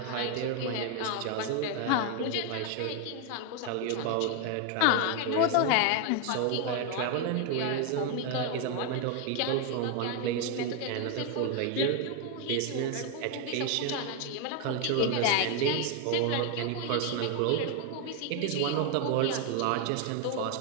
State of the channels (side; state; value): both; different; correlation 0.01